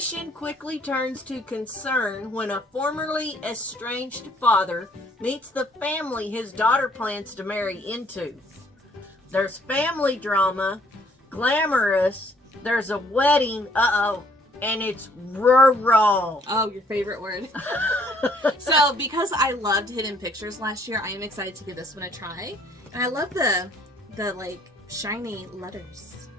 quickly turns to concern when a formerly estranged father meets the family his daughter plans to marry into. There's family drama, glamorous, there's a wedding, and it's rural. Oh, your favorite word. So, because I loved Hidden Pictures last year, I am excited to give this one a try. And I love the like shiny letters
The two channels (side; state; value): both; normal; correlation 0.63